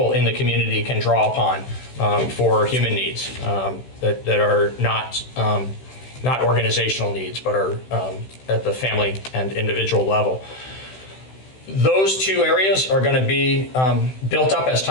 in the community can draw upon for human needs that are not organizational needs, but are at the family and individual level. Those 2 areas are going to be built up as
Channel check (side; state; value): right; late; 16 ms